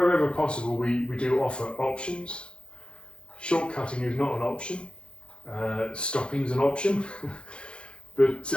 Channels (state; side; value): late; right; 0.056 ms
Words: possible we do offer options. Shortcutting is not an option, stopping is an option, but